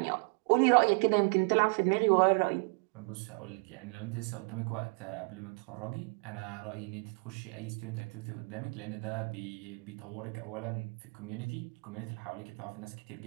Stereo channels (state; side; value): quieter; left; 36.8 dB